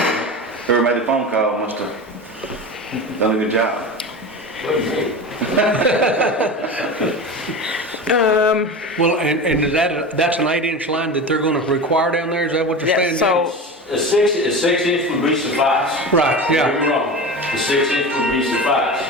made the phone call must have done a good job. Well, and is that's an 8-inch line that they're gonna require down there? Is that what you're Yeah, saying? so A 6-inch would be suffice. Right, Don't yeah. get me wrong, the 6-inch would be suffice,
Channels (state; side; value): normal; both; correlation 0.28